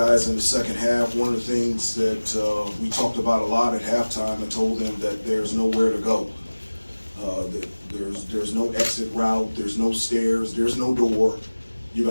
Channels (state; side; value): inverted; both; correlation -1.00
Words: in the second half. One of the things that we talked about a lot at halftime, I told them that there's nowhere to go. There's no exit route, there's no stairs, there's no door. You're